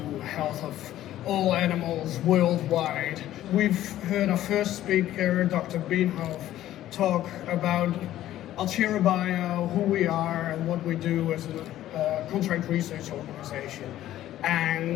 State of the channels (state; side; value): quieter; right; 13.3 dB